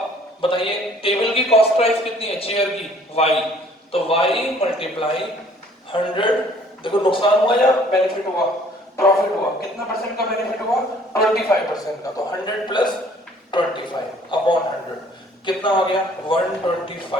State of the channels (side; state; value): both; normal; correlation 0.56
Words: बताइए टेबल की कॉस्ट प्राइस कितनी है चेयर की? y, तो y मल्टीप्लाई 100। देखो नुकसान हुआ या बेनिफिट हुआ? प्रॉफिट हुआ। कितना परसेंट का बेनिफिट हुआ? 25% का। तो 100 प्लस 25 अपॉन 100 कितना हो गया?